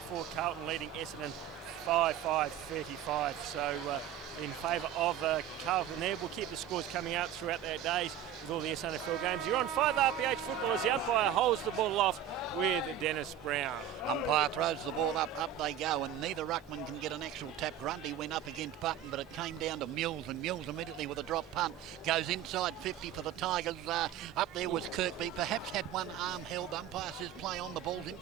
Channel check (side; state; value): left; quieter; 9.9 dB